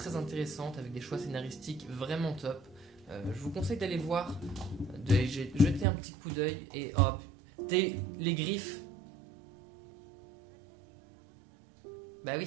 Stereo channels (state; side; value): drops out; left; at 5.9 s